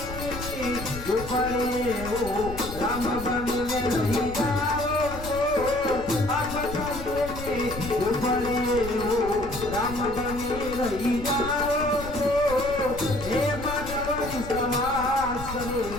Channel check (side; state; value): left; noise; rumble, 11 dB below the sound